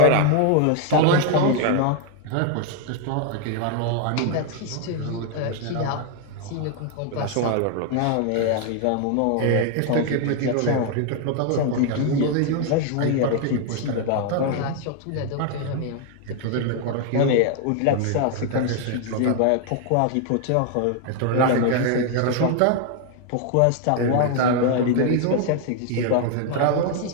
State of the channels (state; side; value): different; both; correlation 0.00